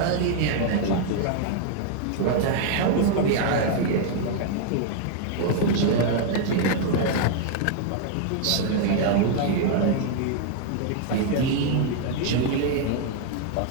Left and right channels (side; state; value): both; different; correlation 0.00